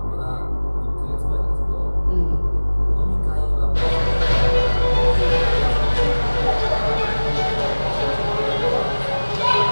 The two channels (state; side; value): inverted; both; correlation -1.00